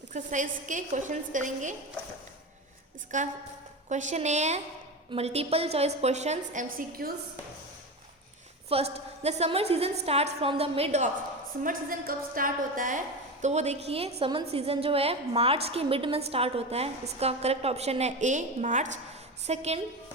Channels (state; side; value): normal; both; correlation 0.22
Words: के क्वेश्चंस करेंगे। इसका क्वेश्चन ए है multiple choice questions MCQs। First, the summer season start from the mid of. Summer season कब स्टार्ट होता है? तो वो देखिए, समर सीजन जो है मार्च के मिड में स्टार्ट होता है। इसका करेक्ट ऑप्शन है A, March. Second,